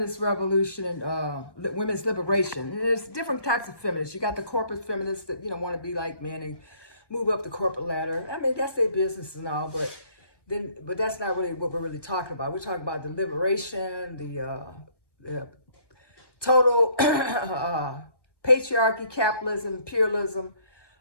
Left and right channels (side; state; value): right; late; 1.1 ms